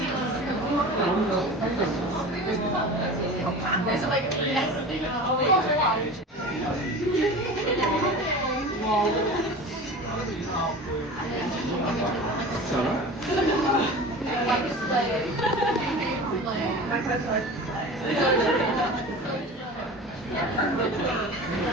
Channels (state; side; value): normal; both; correlation 0.35